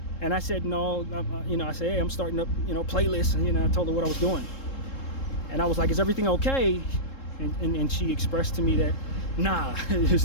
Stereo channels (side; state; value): right; late; 3.7 ms